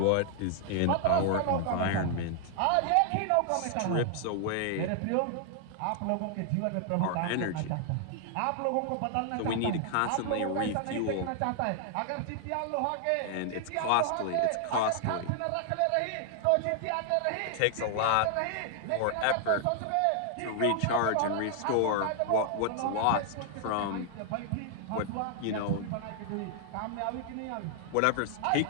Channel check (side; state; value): both; different; correlation 0.00